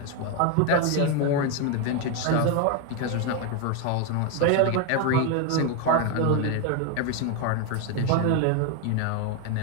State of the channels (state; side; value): different; both; correlation 0.02